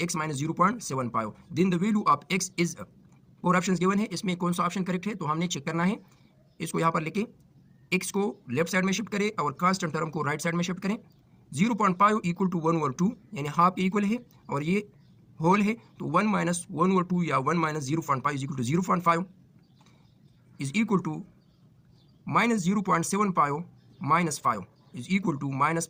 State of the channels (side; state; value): both; identical; correlation 1.00